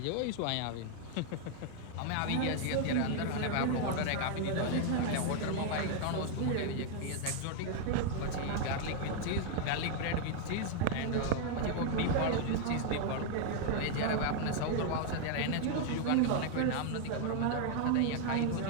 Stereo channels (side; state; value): both; different; correlation 0.00